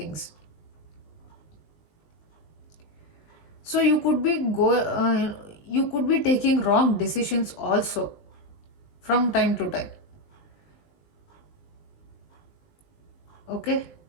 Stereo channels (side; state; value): right; late; 19 ms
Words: So you could be taking wrong decisions also from time to time. Okay.